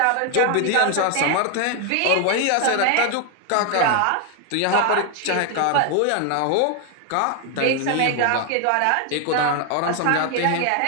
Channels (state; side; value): different; both; correlation 0.01